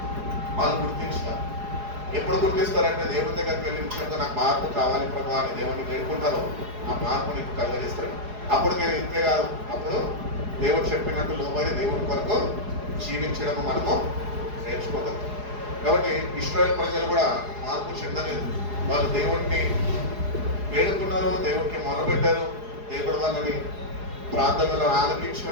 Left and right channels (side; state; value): left; late; 4.8 ms